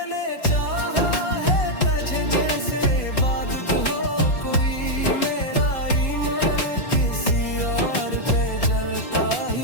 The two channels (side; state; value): right; late; 4.1 ms